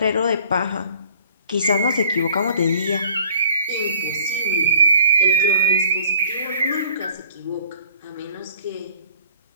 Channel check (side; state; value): both; inverted; correlation -0.53